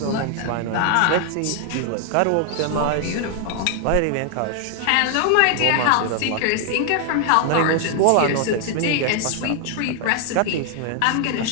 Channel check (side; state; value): both; different; correlation 0.00